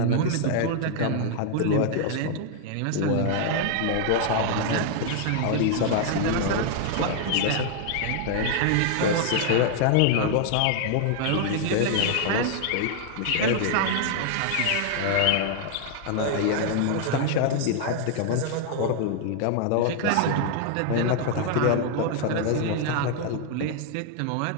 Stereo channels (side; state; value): both; different; correlation 0.00